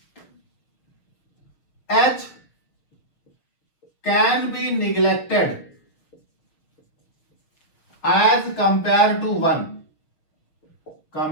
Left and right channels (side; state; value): right; late; 6.4 ms